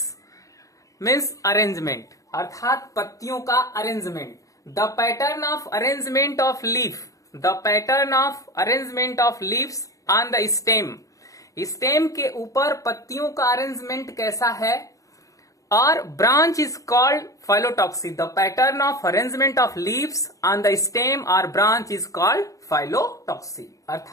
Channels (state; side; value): late; right; 0.16 ms